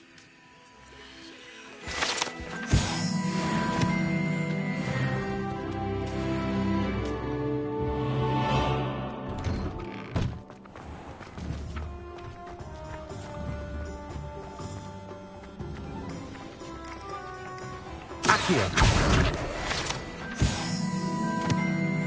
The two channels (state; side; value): identical; both; correlation 1.00